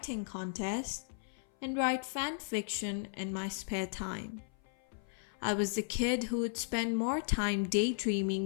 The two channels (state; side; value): silent; right; 54 dB below the other